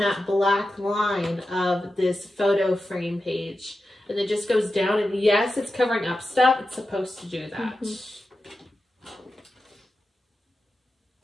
black line of this photo frame page. And it just goes down, and yes, it's covering up stuff. It's supposed to do that. Mm-hmm.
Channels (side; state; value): both; normal; correlation 0.91